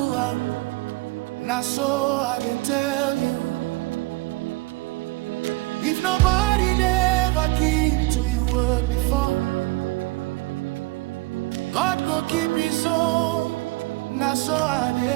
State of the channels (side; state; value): left; quieter; 22.0 dB